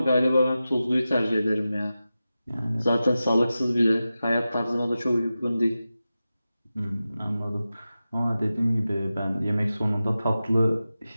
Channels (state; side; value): inverted; both; correlation -0.94